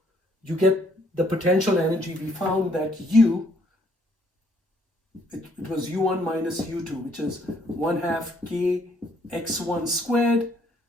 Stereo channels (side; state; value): both; normal; correlation 0.67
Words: you get the potential energy. We found that it was u1 minus u2, which is 1/2 k x1 squared